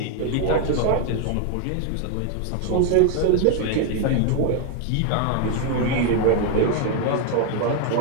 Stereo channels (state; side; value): different; both; correlation 0.01